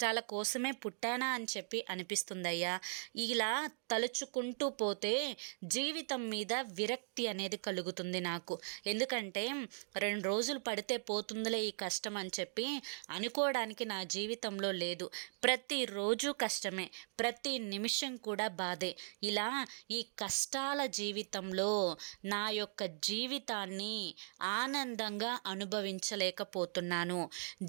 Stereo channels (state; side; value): silent; left; digital silence